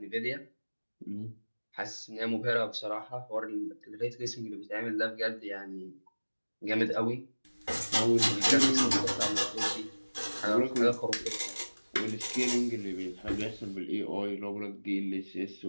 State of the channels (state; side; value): inverted; both; correlation -1.00